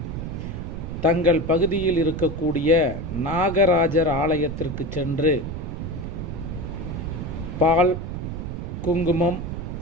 தங்கள் பகுதியில் இருக்கக்கூடிய நாகராஜர் ஆலயத்திற்கு சென்று பால், குங்குமம்,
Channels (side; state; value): right; noise; rumble, 6 dB below the sound